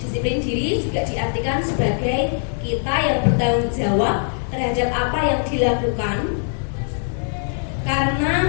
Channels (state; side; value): silent; right; 61 dB below the other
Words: Disiplin diri juga diartikan sebagai kita yang bertanggung jawab terhadap apa yang dilakukan karena